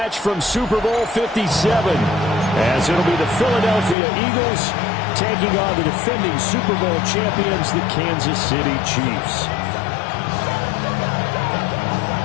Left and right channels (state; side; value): drops out; right; at 4.0 s